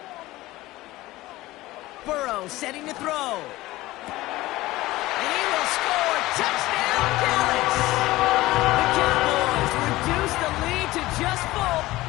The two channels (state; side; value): quieter; right; 18.0 dB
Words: Burrow setting to throw. And he will score. Touchdown, Dallas! The Cowboys reduce the lead to just 4.